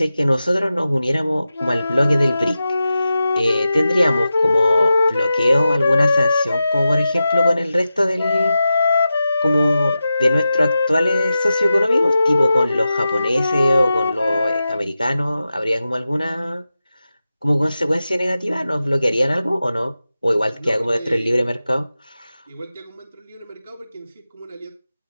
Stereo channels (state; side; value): inverted; both; correlation -0.92